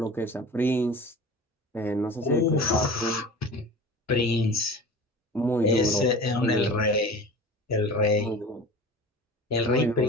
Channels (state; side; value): normal; both; correlation 0.37